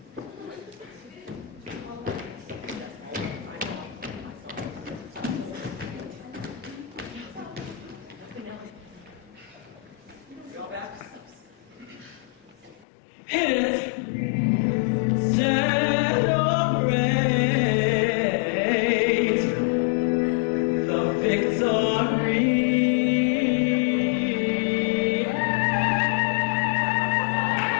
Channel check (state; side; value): drops out; right; at 12.9 s